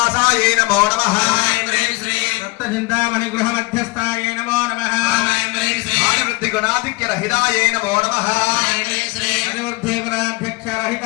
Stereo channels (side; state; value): right; quieter; 25.0 dB